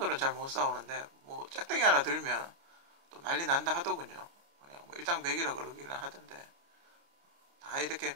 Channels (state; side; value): late; left; 29 ms